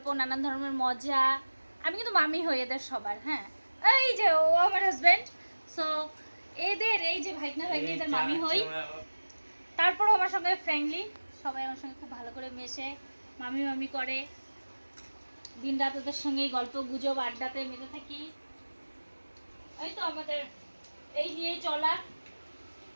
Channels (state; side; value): inverted; both; correlation -1.00